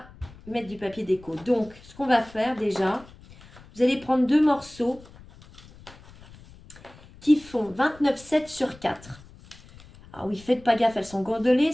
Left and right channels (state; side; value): noise; left; rumble, 22 dB below the sound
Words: mettre du papier déco. Donc, ce qu'on va faire déjà, vous allez prendre 2 morceaux qui font 29,7 sur 4. Alors oui, faites pas gaffe, elles sont gondolées.